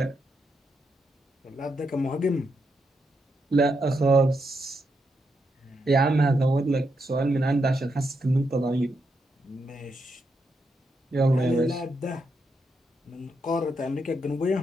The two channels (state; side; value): normal; both; correlation 0.82